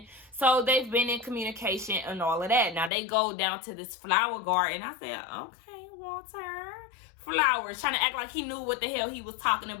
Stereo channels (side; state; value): right; drops out; at 2.9 s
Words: So they've been in communication and all of that. Now they go down to this flower garden. I said, okay, Walter. Flowers. Trying to act like he knew what the hell he was talking